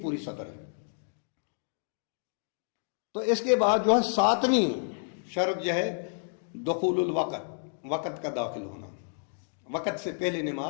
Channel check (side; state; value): right; silent; 58 dB below the other